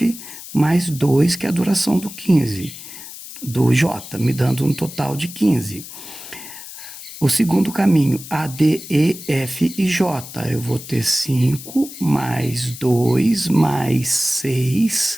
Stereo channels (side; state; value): left; noise; hiss, 13 dB below the sound